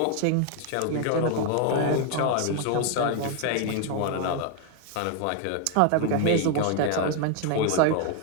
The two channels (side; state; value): both; different; correlation 0.00